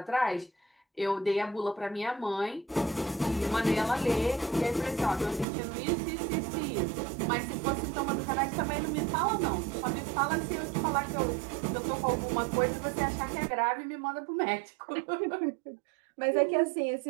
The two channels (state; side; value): drops out; left; at 5.5 s